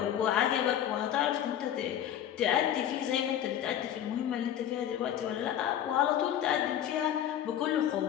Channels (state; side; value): quieter; right; 10.6 dB